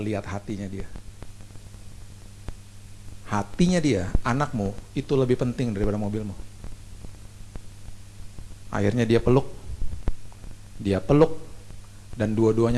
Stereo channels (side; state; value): both; identical; correlation 1.00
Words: lihat hatinya dia. Hatinya dia, anakmu, itu lebih penting daripada mobilmu. Akhirnya dia peluk, dan